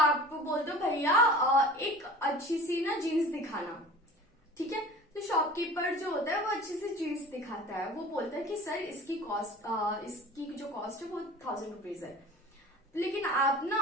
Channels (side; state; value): both; normal; correlation 0.41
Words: बोलते हो भैया एक अच्छी सी ना जीन्स दिखाना, ठीक है, तो शॉपकीपर जो होता है वो अच्छी सी जीन्स दिखाता है, वो बोलता है कि सर इसकी कॉस्ट इसकी जो कॉस्ट है वो 1000 रुपीज है, लेकिन आप ना